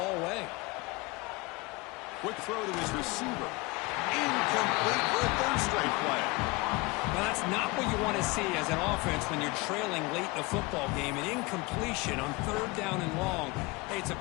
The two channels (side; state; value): right; quieter; 24.7 dB